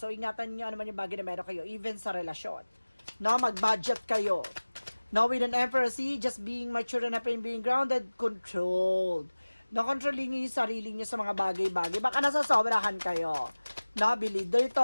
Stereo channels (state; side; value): inverted; both; correlation -1.00